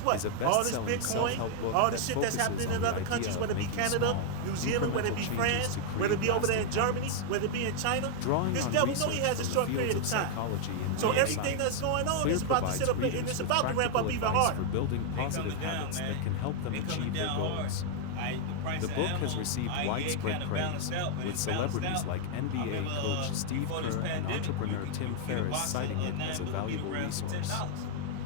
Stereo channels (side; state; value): both; different; correlation 0.00